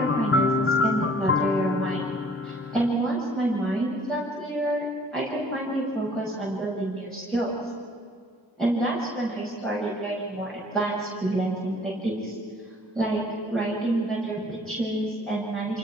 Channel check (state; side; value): normal; both; correlation 0.56